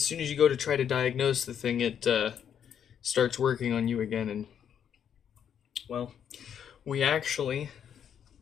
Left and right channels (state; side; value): quieter; right; 8.6 dB